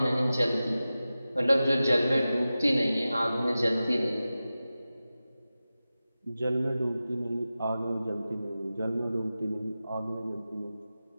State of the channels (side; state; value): both; inverted; correlation -0.94